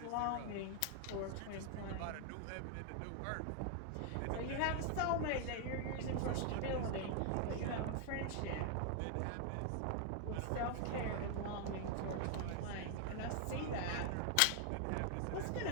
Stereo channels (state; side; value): different; both; correlation 0.00